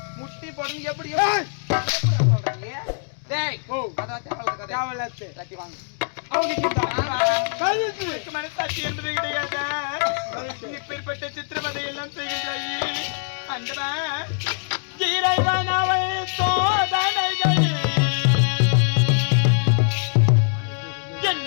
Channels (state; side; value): silent; right; digital silence